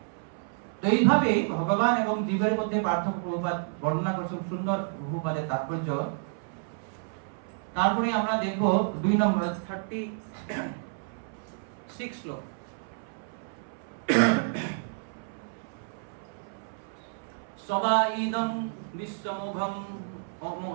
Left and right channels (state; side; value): silent; left; 58 dB below the other